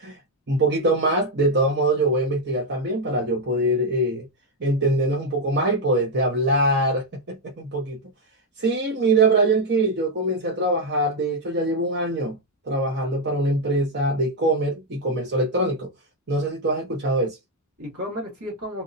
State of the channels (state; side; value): normal; both; correlation 0.03